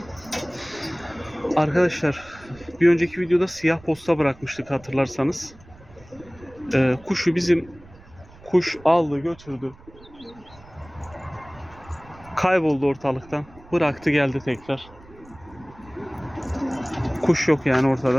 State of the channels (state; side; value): noise; right; rumble, 23 dB below the sound